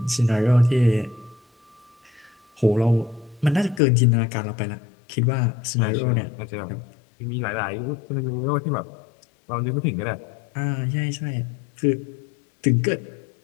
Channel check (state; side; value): drops out; right; at 3.8 s